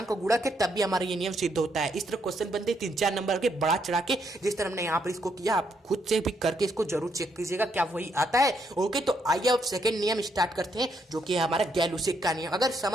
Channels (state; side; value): normal; both; correlation 0.75